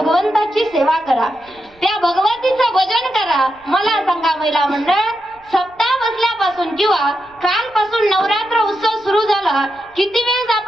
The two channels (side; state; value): right; noise; rumble, 30 dB below the sound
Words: सेवा करा, त्या भगवतीचं भजन करा. मला सांगा महिला मंडळ, सप्ताह बसल्यापासून किंवा कालपासून नवरात्र उत्सव सुरू झाला, किती वेळेस